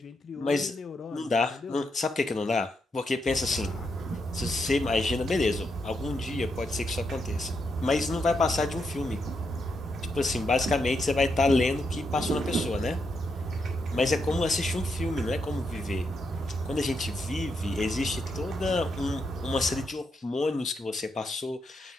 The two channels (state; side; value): normal; both; correlation 0.81